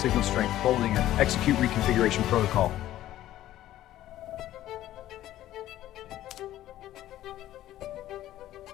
Signal strength holding and execute reconfiguration protocol.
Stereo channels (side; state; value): right; quieter; 13.7 dB